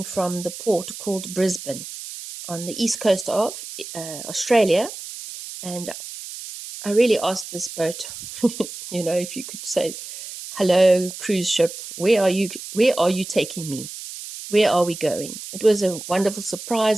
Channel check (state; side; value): noise; right; hiss, 11 dB below the sound